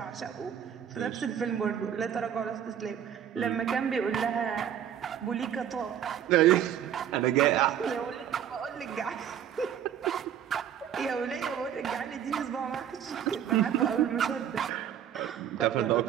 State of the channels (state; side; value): quieter; left; 9.6 dB